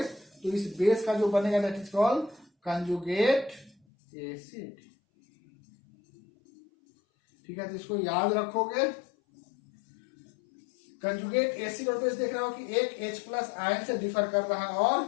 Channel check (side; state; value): right; drops out; at 3.8 s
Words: तो इस बेस का जो बनेगा that is called conjugate acid, ठीक है। तो इसको याद रखोगे, कंजुगेट एसिड और बेस देख रहे हो कि एक H प्लस आयन से डिफर कर रहा है और